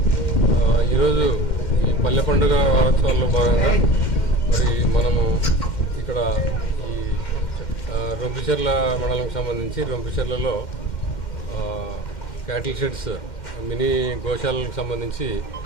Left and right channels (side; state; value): right; late; 2.1 ms